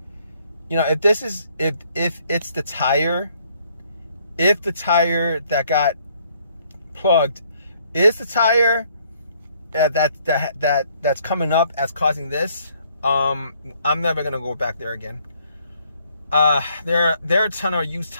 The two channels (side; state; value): both; inverted; correlation -0.66